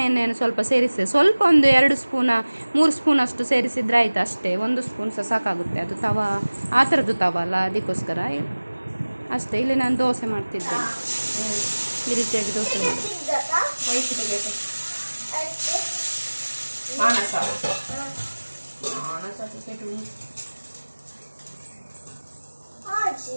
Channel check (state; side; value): inverted; both; correlation -1.00